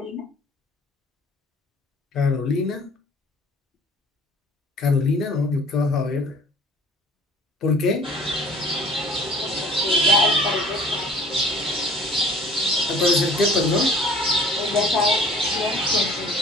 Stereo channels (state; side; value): normal; both; correlation 0.50